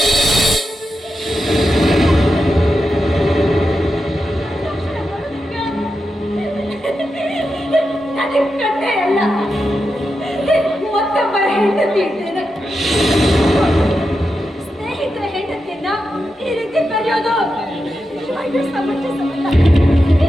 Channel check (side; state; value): both; normal; correlation 0.88